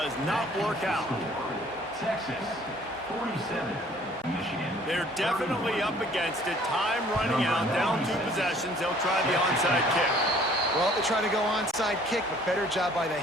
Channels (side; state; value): both; normal; correlation 0.56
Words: not work out. Texas, 47. Michigan. They're definitely up against it. Time running out. Down 2 possessions. They'll try the onside kick. Well, they try to go onside kick, but better job by the